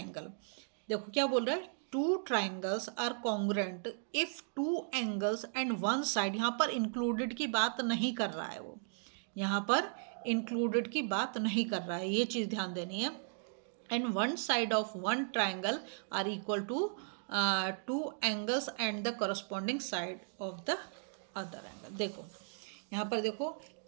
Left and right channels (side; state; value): left; silent; digital silence